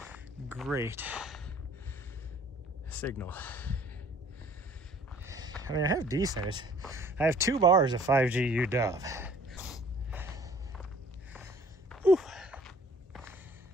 great signal. I mean, I have decent. I have 2 bars of 5G UW. Whew.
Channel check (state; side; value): normal; both; correlation 0.54